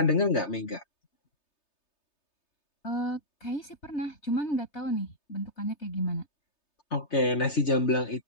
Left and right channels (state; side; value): late; right; 3.3 ms